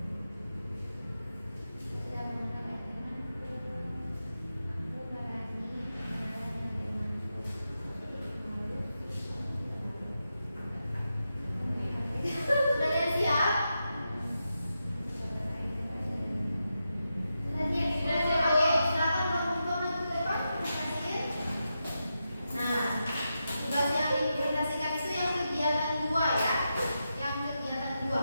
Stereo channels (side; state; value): both; inverted; correlation -0.88